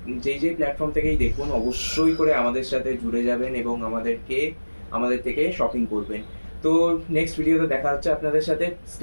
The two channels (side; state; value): both; inverted; correlation -1.00